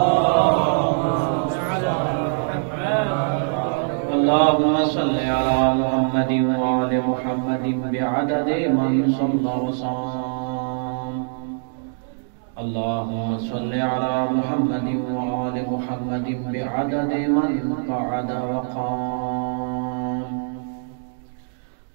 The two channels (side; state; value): left; silent; digital silence